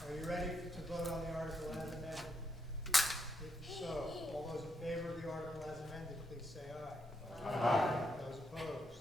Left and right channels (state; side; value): normal; both; correlation 0.81